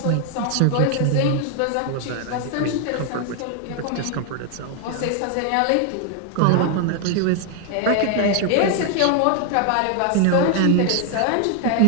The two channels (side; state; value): both; different; correlation 0.00